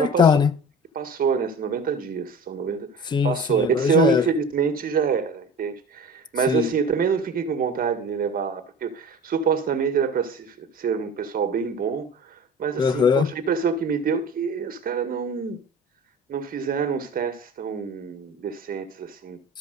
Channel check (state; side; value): normal; both; correlation 0.38